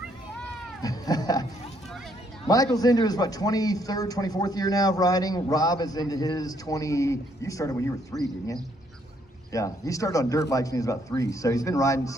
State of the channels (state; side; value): normal; both; correlation 0.70